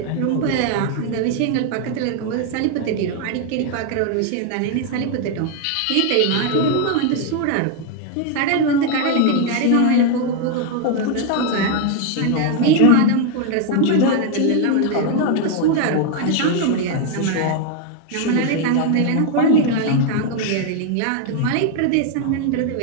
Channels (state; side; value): different; both; correlation 0.01